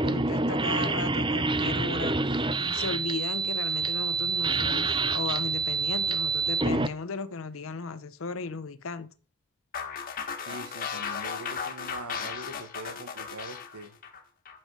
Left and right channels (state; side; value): normal; both; correlation 0.38